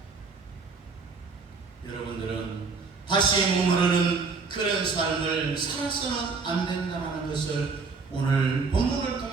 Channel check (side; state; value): left; quieter; 4.5 dB